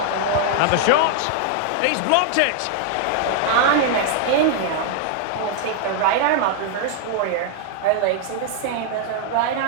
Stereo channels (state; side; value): different; both; correlation 0.00